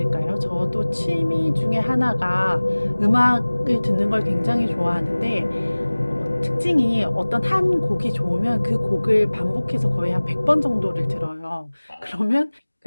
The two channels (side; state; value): both; inverted; correlation -1.00